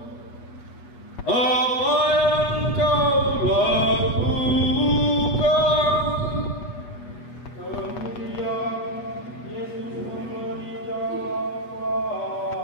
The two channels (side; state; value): right; late; 8.3 ms